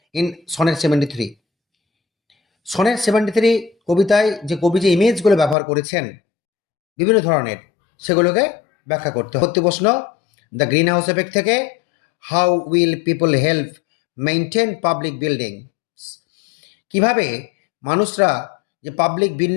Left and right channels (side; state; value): right; drops out; at 5.6 s